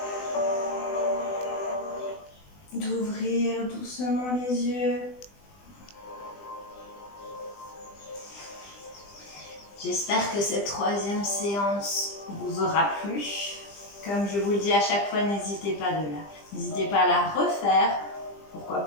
d'ouvrir doucement les yeux. J'espère que cette troisième séance vous aura plu. Comme je vous le dis à chaque fois, n'hésitez pas à la refaire. Pourquoi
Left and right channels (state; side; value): late; right; 20 ms